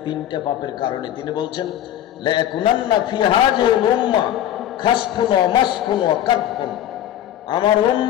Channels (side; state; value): right; quieter; 11.6 dB